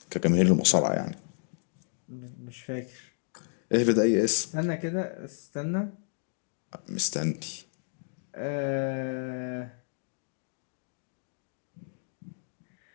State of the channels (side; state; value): right; silent; digital silence